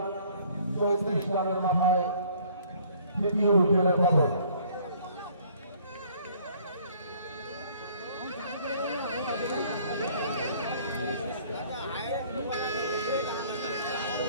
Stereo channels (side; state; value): both; inverted; correlation -0.57